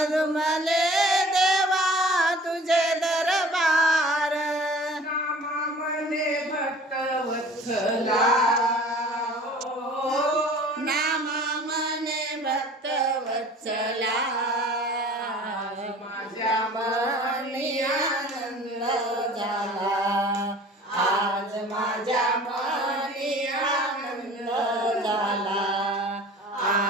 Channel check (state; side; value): normal; both; correlation 0.46